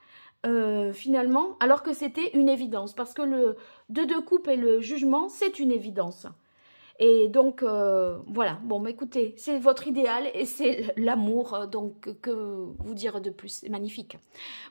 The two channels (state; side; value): inverted; both; correlation -1.00